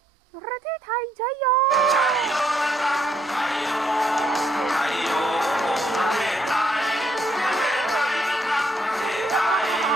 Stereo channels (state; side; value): normal; both; correlation 0.73